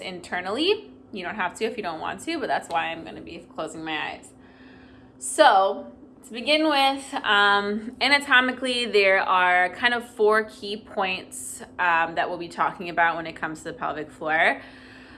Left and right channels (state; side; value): identical; both; correlation 1.00